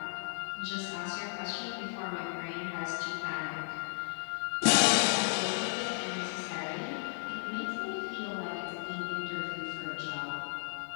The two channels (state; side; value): silent; right; digital silence